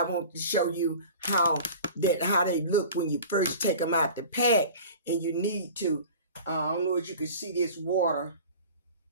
want to show you how they look when you first take them out the pack. And you need to, I don't know if you can see this water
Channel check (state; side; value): inverted; both; correlation -0.40